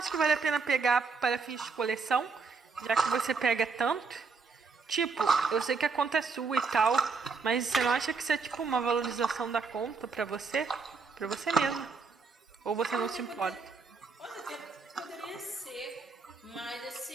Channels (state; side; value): quieter; left; 4.8 dB